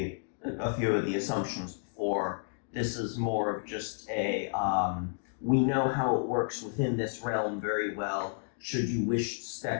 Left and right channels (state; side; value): silent; right; digital silence